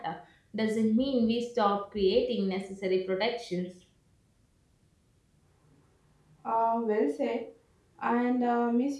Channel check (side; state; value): both; identical; correlation 1.00